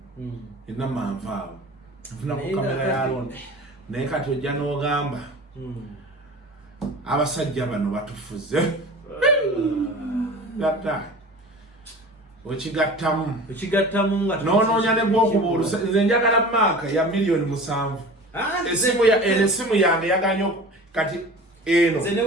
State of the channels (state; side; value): normal; both; correlation 0.38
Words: ina manvaawo nafunako kamera ya looni naye kati ojja n'ogamba abasajja bano batufuze gatta okigattamu nga noonoonya ne gw'okuba olusa nze njagala maaka ya miliyoni 7 esimu yange yaganya kati eno